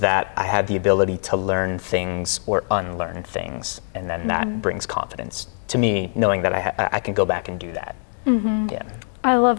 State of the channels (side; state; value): right; silent; digital silence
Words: that I have the ability to learn things or unlearn things, and then that brings confidence to me, knowing that I can go back and do that. Yeah. I